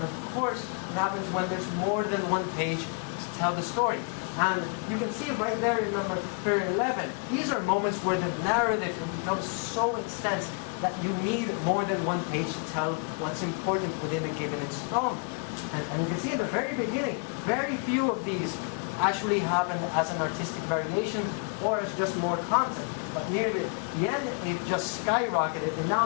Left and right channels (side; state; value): right; quieter; 38.1 dB